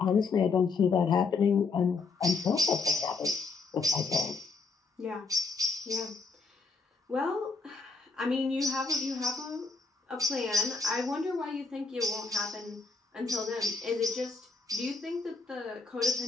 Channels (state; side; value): quieter; right; 4.2 dB